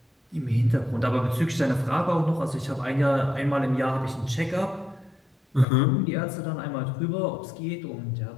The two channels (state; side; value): drops out; right; at 5.7 s